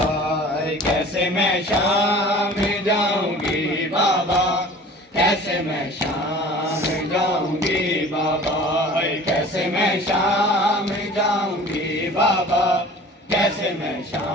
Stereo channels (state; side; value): normal; both; correlation 0.44